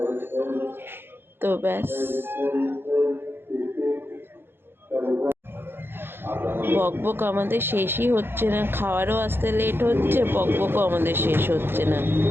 তো ব্যাস, বকবক আমাদের শেষই হচ্ছে না, খাওয়ারও আসতে লেট হচ্ছে, বকবকও আমাদের শেষ হচ্ছে না,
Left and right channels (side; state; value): left; late; 0.10 ms